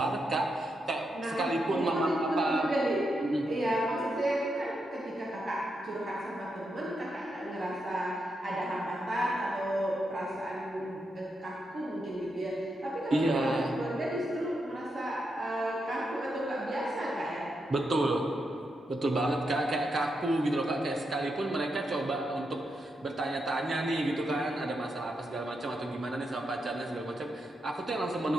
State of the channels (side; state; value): both; normal; correlation 0.84